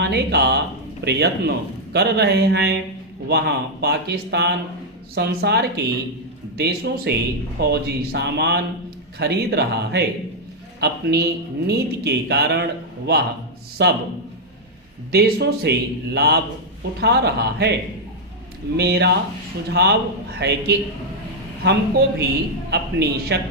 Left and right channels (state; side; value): normal; both; correlation -0.01